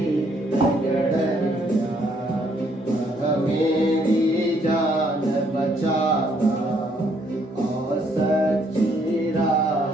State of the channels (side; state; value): both; normal; correlation 0.69